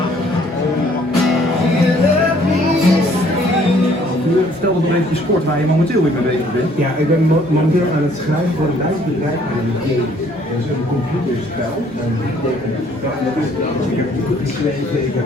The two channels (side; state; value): both; normal; correlation 0.61